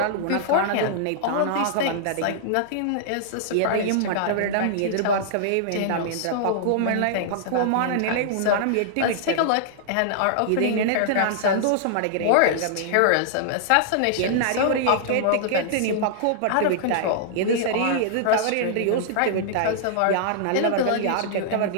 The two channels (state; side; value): different; both; correlation -0.01